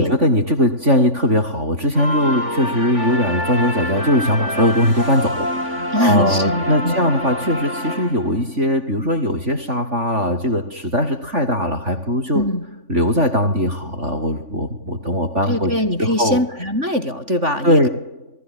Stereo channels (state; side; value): late; left; 3.5 ms